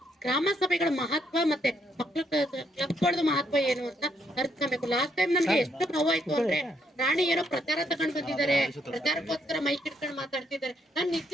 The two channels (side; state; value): both; normal; correlation 0.74